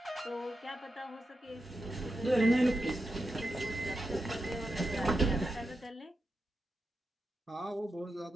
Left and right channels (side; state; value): both; normal; correlation 0.88